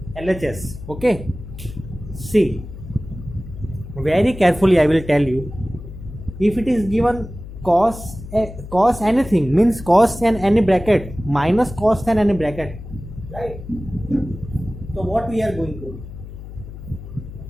LHS. Okay, see, very carefully I will tell you. If it is given cos anything, means cos and any bracket minus cos and any bracket, right? So what we are going to do?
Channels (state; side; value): noise; left; hum, 13 dB below the sound